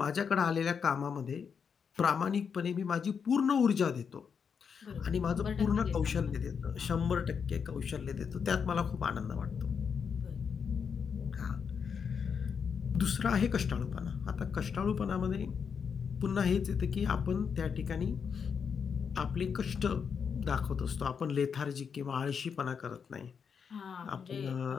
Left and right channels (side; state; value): right; quieter; 6.5 dB